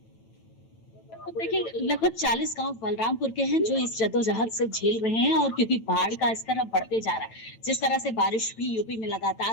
देखिए, लगभग 40 गांव बलरामपुर के हैं जो इस जद्दोजहद से झेल रहे हैं और क्योंकि बाढ़ का स्तर अब बढ़ते जा रहा है, जिस तरह से बारिश भी यूपी में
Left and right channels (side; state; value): right; late; 9.0 ms